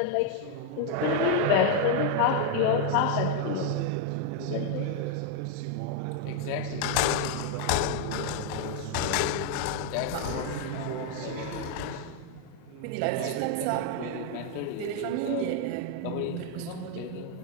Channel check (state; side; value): different; both; correlation 0.00